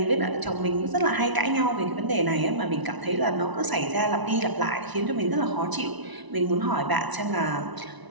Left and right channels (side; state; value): left; late; 1.0 ms